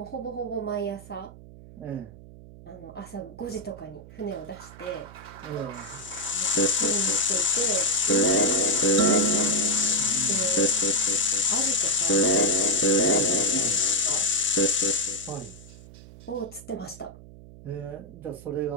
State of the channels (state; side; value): noise; right; hum, 19 dB below the sound